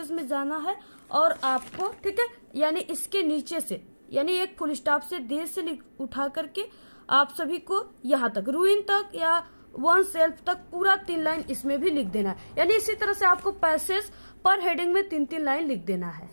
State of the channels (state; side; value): inverted; both; correlation -1.00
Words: में जाना है, और आपको, ठीक है, यानी इसके नीचे से, यानी एक फुल स्टॉप से देर से उठा करके आप सभी को यहाँ तक रूइन तक या वन सेल्फ तक पूरा 3 लाइन इसमें भी लिख देना है, यानी इसी तरह से आपको पैसेज पर हेडिंग में 3-3 लाइन लिख देना है। इस